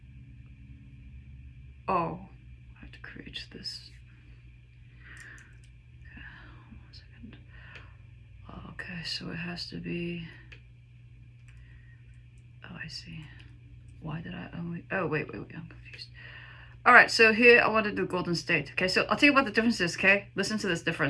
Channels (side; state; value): both; identical; correlation 1.00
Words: Oh, I have to create this. Okay, 1 second. Okay, so it has to be. Oh, I see. Why did I only? Oh, wait, I'm confused. All right, so here I want to do Golden State. Okay, so I'll tell you what the difference is. Okay, listen to this